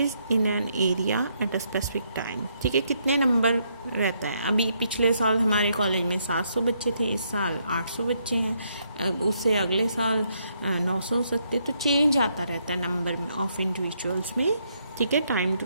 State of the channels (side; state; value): both; inverted; correlation -0.75